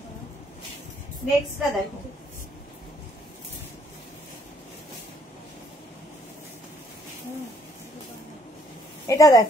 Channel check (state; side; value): normal; both; correlation 0.66